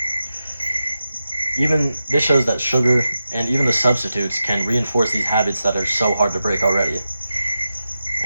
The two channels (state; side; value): inverted; both; correlation -0.91